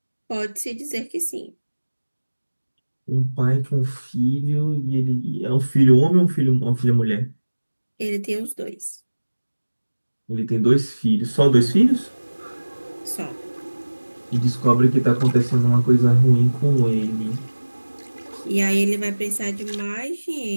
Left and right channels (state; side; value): inverted; both; correlation -1.00